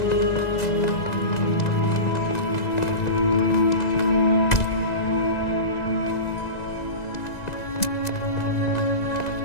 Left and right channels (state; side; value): late; right; 1.9 ms